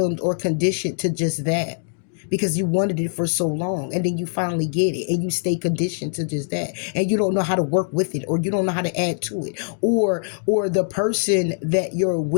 or conditioned to just that because you wanted it for so long, and then you finally get it and you stay conditioned to just that, and you don't know how to work with it, or you don't know how to add to it, or the person that you're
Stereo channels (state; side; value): silent; right; digital silence